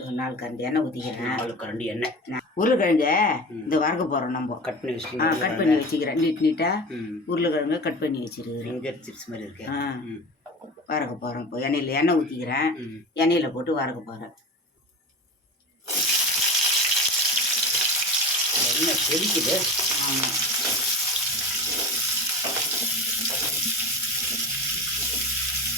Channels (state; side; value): normal; both; correlation 0.30